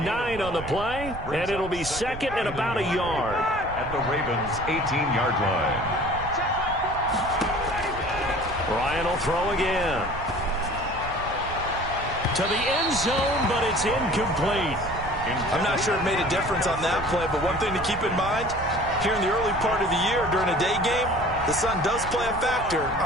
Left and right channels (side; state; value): right; noise; rumble, 11 dB below the sound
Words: 9 on the play, and it'll be 2nd and about a yard. At the Ravens' 18-yard line. Ryan will throw again. To the end zone, but it's incomplete. I'm not sure it made a difference on that play, but one thing to keep in mind, here in the early part of the year during a day game, the sun does play a factor